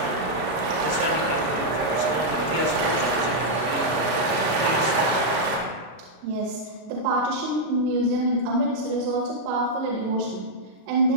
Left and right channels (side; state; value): left; late; 33 ms